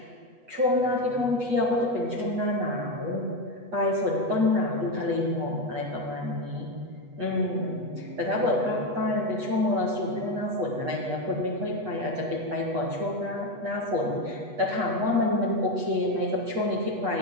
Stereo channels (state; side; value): late; left; 8.2 ms